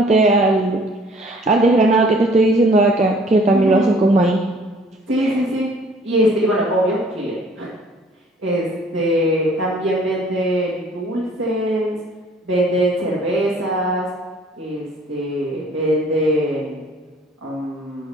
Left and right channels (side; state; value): both; normal; correlation 0.55